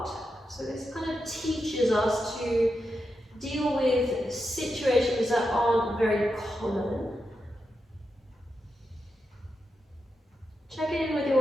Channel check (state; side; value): normal; both; correlation 0.87